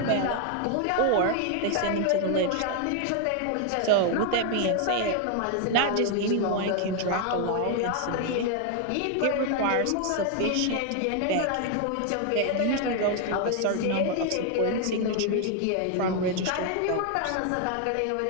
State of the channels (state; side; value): different; both; correlation 0.00